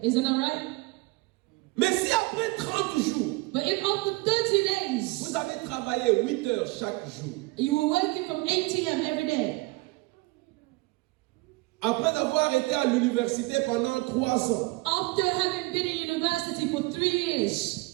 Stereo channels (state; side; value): quieter; left; 24.1 dB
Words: isn't that right? Mais si après 30 jours, But if after 30 days, vous avez travaillé 8 heures chaque jour, you were working from 8 a.m. every day, après avoir été à l'université pendant 3 ans, after having been in university for 3 years,